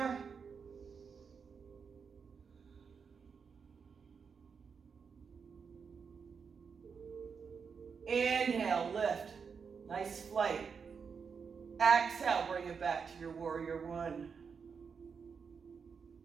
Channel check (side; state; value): left; quieter; 6.0 dB